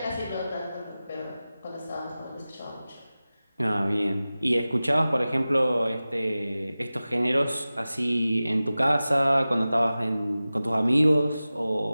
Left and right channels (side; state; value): both; inverted; correlation -0.96